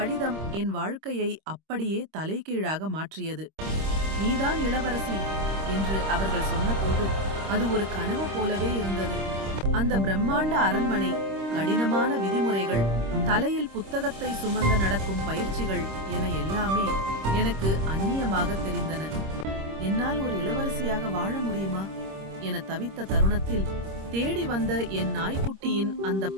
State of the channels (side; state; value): left; late; 26 ms